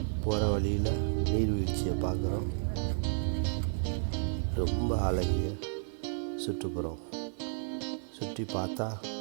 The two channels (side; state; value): left; silent; digital silence